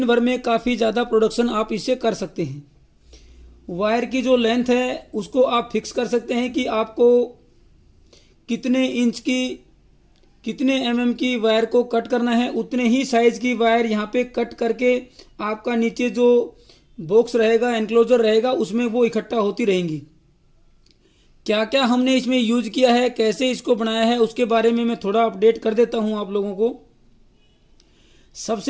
भर में काफ़ी ज़्यादा प्रोडक्शन आप इससे कर सकते हैं। वायर की जो लेंथ है उसको आप फिक्स कर सकते हैं कि आपको कितने इंच की, कितने एमएम की वायर को कट करना है। उतने ही साइज की वायर यहाँ पे कट करके आपका नीचे जो बॉक्स रहेगा, एनक्लोजर रहेगा, उसमें वो इकट्ठा होती रहेंगी। क्या क्या हमने इसमें यूज किया है, कैसे इसको बनाया है, उसके बारे में मैं थोड़ा अपडेट कर देता हूँ आप लोगों को।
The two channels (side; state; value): both; identical; correlation 1.00